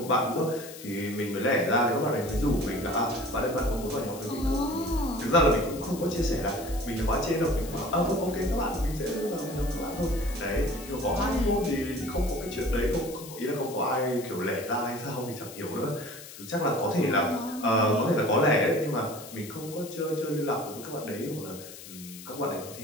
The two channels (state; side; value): noise; left; hiss, 15 dB below the sound